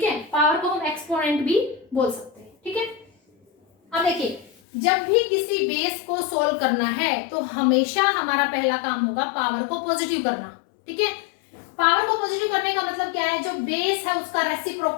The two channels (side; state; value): right; drops out; at 4.5 s